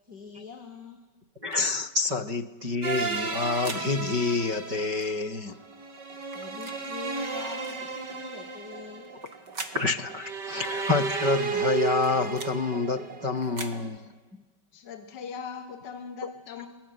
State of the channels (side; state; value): left; late; 5.2 ms